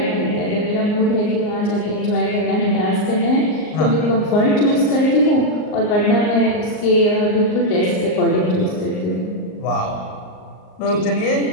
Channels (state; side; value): late; right; 38 ms